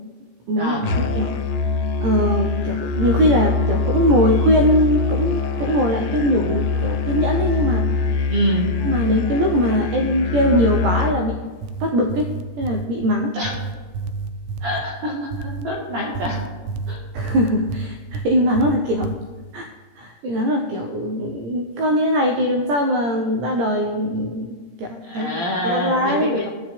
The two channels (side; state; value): left; late; 17 ms